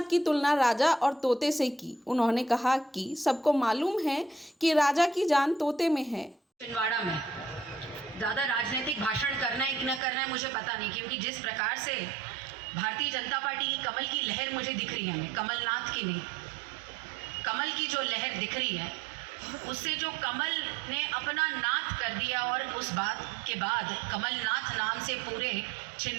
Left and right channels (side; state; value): left; drops out; at 10.0 s